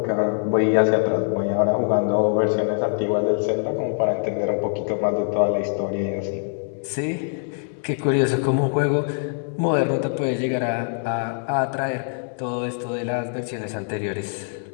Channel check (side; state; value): right; silent; digital silence